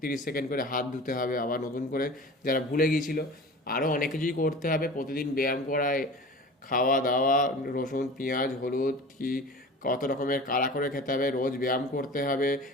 30 সেকেন্ড করে হাত ধুতে হবে, আবার নতুন করে যারা ভুলে গিয়েছিল আরও অনেক কিছুই করতে হবে। প্রতিদিন ব্যায়াম করায়, খাওয়া দাওয়া, রসুন পেঁয়াজ হলুদ কি কত রকমের কাড়া করে খেতে হবে, রোজ ব্যায়াম করতে হবে,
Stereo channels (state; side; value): normal; both; correlation 0.38